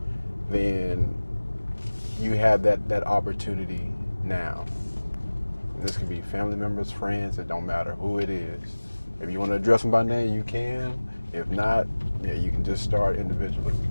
Then you have that opportunity now. This can be family members, friends, it don't matter who it is. If you want to address them by name, you can. If not, you can just start individually. We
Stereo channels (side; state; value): both; inverted; correlation -1.00